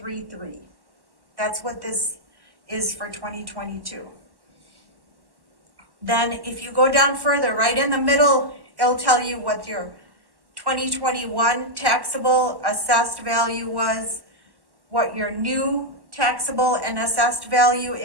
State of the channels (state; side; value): late; left; 1.1 ms